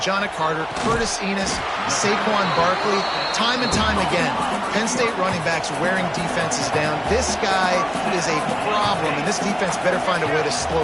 Carter, Curtis Enos, Saquon Barkley, time and time again, Penn State running backs wearing defenses down. This guy is a problem, and this defense better find a way to slow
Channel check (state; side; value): identical; both; correlation 1.00